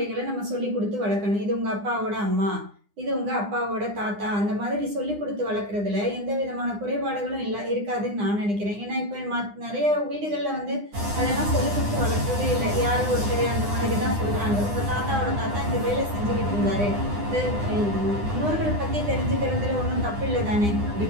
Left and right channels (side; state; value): left; late; 9.8 ms